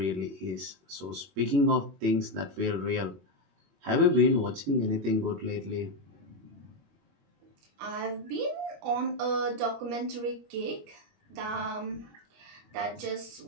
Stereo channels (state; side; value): late; left; 21 ms